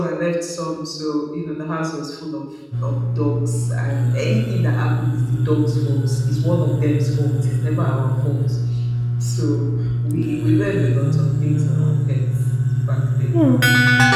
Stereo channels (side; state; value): both; identical; correlation 1.00